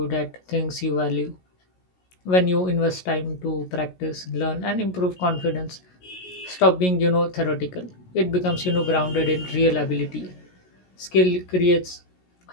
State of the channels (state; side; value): late; right; 16 ms